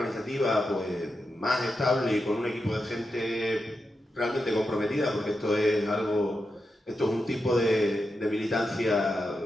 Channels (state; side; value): normal; both; correlation 0.88